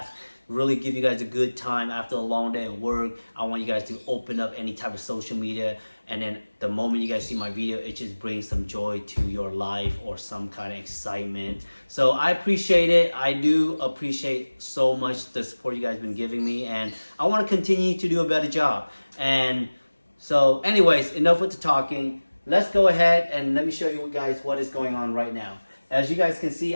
really give you guys a good time after a long day of work. I want you guys to open up any type of social media, and then the moment you guys see my video, it just brings some joy to your life or some kind of excitement. So I appreciate it. I do appreciate so much the support you guys been giving me, and I want to continue to do a better job. And so anyways, enough with the talking. Let's go ahead and let me show you guys what is going on right now. As you guys can see,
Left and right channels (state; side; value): inverted; both; correlation -1.00